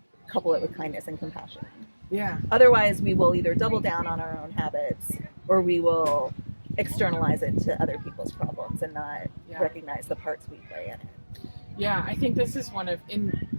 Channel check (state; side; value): inverted; both; correlation -1.00